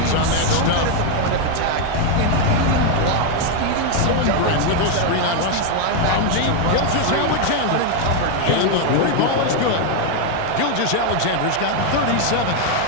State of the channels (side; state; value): both; different; correlation 0.01